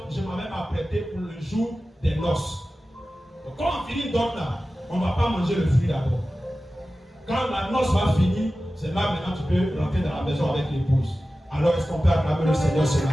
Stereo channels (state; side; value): normal; both; correlation 0.95